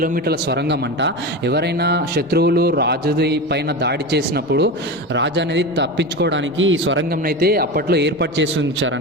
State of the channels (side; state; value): left; noise; rumble, 28 dB below the sound